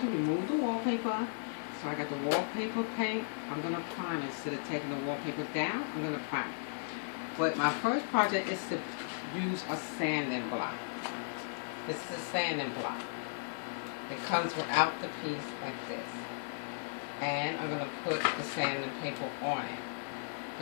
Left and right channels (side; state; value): right; silent; 54 dB below the other